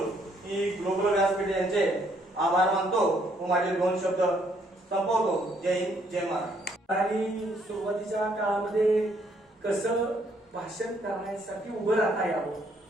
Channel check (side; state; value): both; normal; correlation 0.68